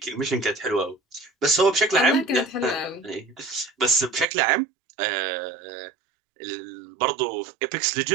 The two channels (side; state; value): left; drops out; at 4.2 s